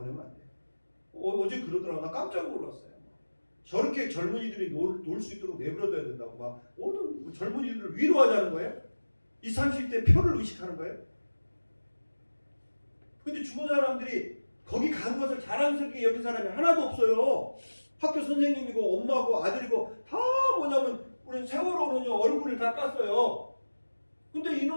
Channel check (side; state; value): both; inverted; correlation -1.00